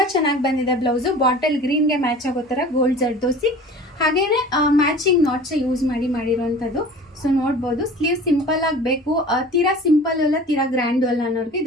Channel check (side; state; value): both; normal; correlation 0.42